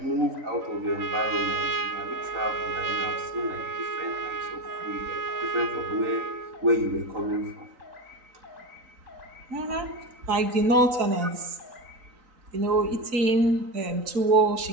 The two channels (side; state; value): left; late; 3.9 ms